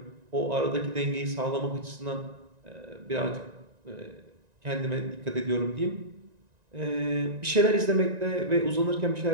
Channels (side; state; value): left; late; 1.9 ms